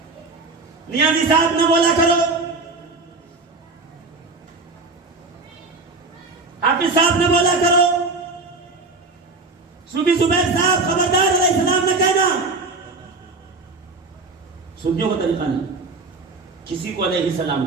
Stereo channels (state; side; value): quieter; left; 3.6 dB